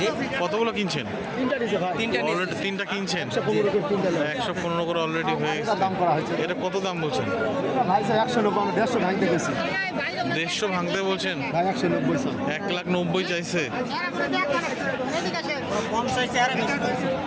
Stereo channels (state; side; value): identical; both; correlation 1.00